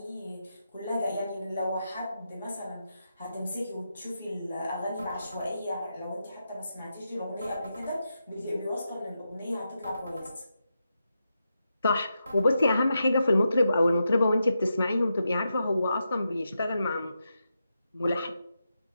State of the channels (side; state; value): both; inverted; correlation -0.86